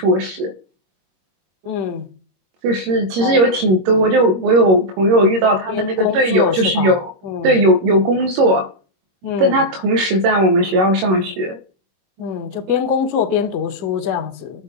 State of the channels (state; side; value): late; left; 21 ms